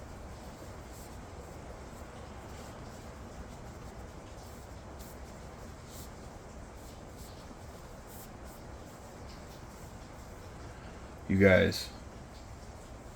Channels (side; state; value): both; identical; correlation 1.00